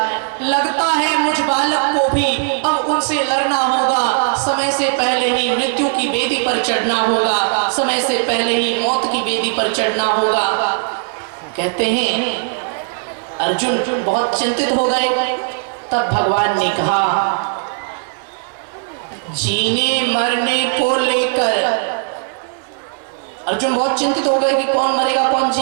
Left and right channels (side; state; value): left; silent; 68 dB below the other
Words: लगता है मुझ बालक को भी अब उनसे लड़ना होगा। समय से पहले ही मृत्यु की बेदी पर चढ़ना होगा। समय से पहले ही मौत की बेदी पर चढ़ना होगा। कहते हैं अर्जुन बहुत चिंतित हो गए। तब भगवान ने कहा, जीने मरने को लेकर अर्जुन बहुत चिंतित हो गए कि कौन मरेगा कौन